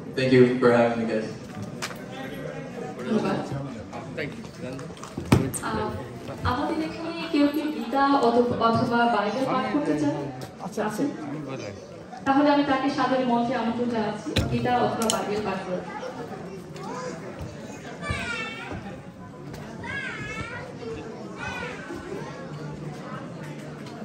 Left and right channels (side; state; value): both; identical; correlation 1.00